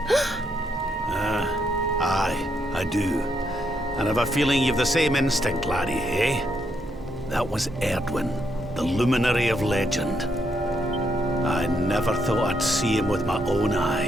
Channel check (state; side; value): normal; both; correlation 0.77